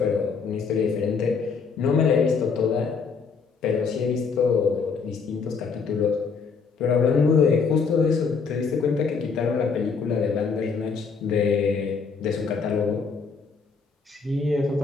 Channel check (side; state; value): right; quieter; 5.3 dB